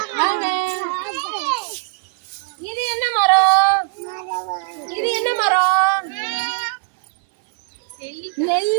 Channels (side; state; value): left; silent; 58 dB below the other